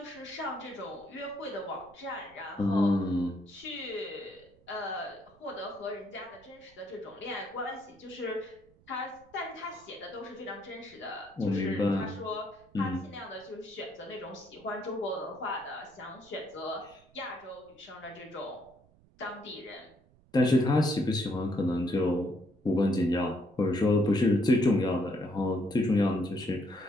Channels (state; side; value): noise; right; rumble, 29 dB below the sound